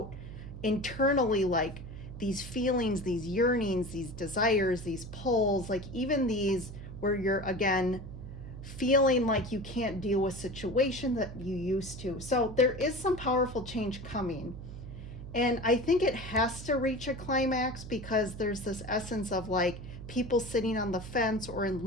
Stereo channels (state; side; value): noise; right; hum, 11 dB below the sound